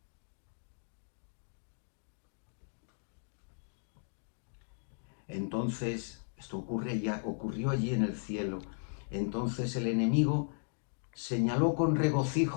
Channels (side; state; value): right; silent; digital silence